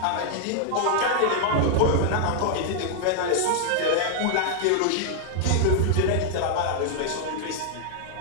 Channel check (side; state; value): both; different; correlation -0.01